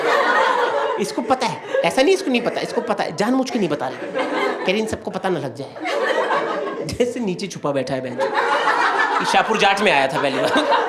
इसको पता है, ऐसा नहीं इसको नहीं पता, इसको पता है, जानबूझ के नहीं बता रहे, कह रही इन सबको पता ना लग जाए। जैसे नीचे छुपा बैठा है बहन। शाहपुर जाट में आया था पहली बार।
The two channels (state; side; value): identical; both; correlation 1.00